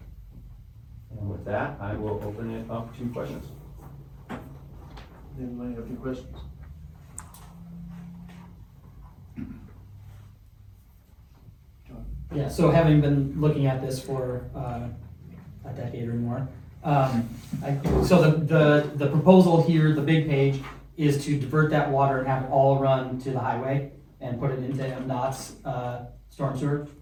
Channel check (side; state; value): both; identical; correlation 1.00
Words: And with that, I will open it up to questions. Anybody have any questions? Yeah, so having been looking at this for a decade or more, so the proposal here, the big page, is to divert that water and have it all run to the highway and put it into MDOT's storm sewer?